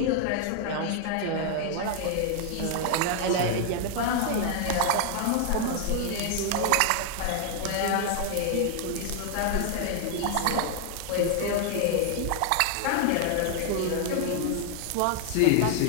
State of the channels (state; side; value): different; both; correlation 0.00